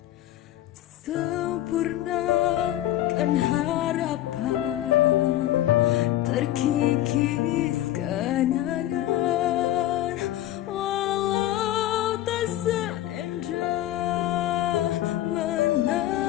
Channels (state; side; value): quieter; right; 13.8 dB